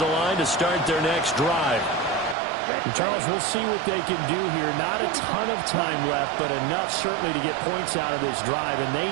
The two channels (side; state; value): left; drops out; at 2.4 s